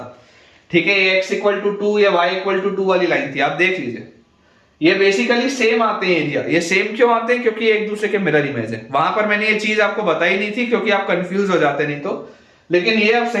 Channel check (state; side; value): identical; both; correlation 1.00